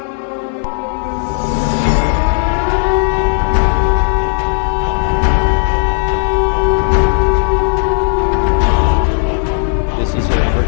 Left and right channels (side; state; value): right; silent; digital silence